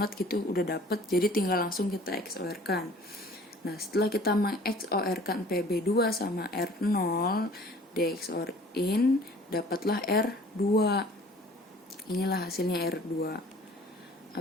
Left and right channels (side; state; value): both; normal; correlation 0.50